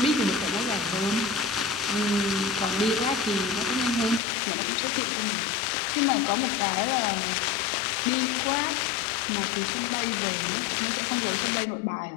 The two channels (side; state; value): right; drops out; at 4.2 s